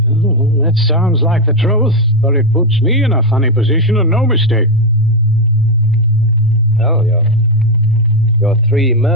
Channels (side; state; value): both; normal; correlation 0.06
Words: Oh, that sounds like the truth, but it puts me in a funny position and no mistake. Well, your three